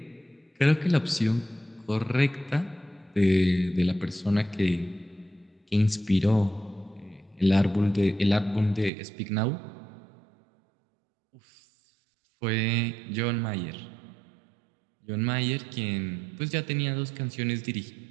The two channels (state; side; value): drops out; left; at 8.9 s